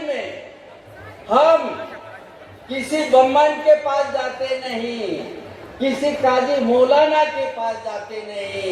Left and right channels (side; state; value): both; identical; correlation 1.00